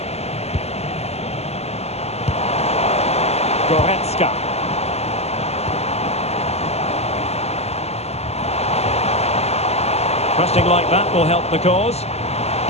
Goretzka. Pressing like that will help the cause.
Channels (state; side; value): late; right; 0.30 ms